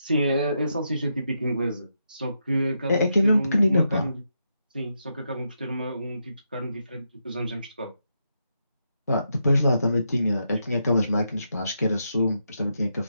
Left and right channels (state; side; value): inverted; both; correlation -0.82